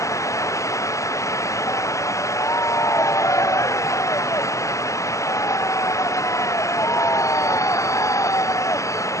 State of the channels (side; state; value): right; late; 0.15 ms